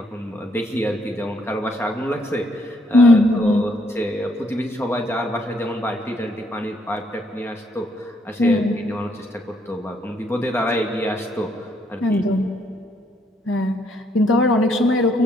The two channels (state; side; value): normal; both; correlation 0.70